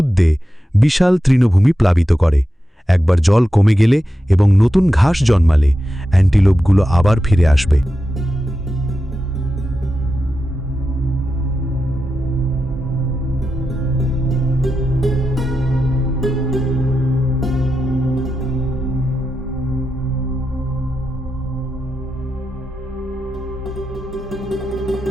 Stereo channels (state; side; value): normal; both; correlation 0.90